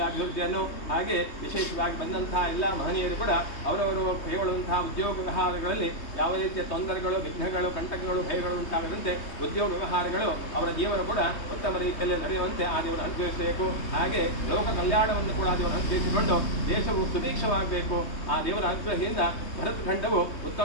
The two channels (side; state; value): right; late; 3.2 ms